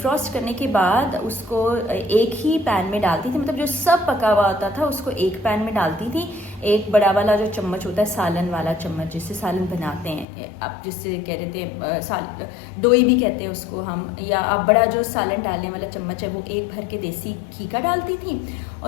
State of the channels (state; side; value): drops out; right; at 10.2 s